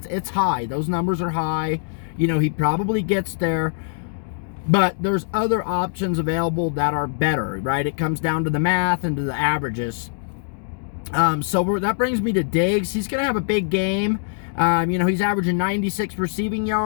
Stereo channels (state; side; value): silent; right; digital silence